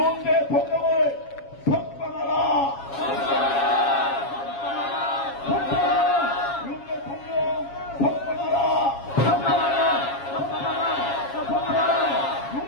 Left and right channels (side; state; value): right; late; 7.3 ms